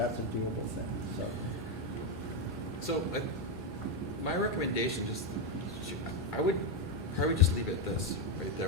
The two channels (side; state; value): both; normal; correlation 0.06